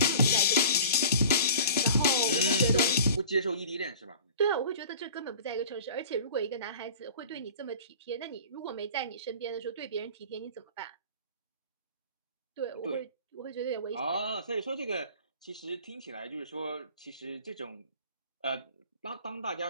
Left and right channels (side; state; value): both; inverted; correlation -0.42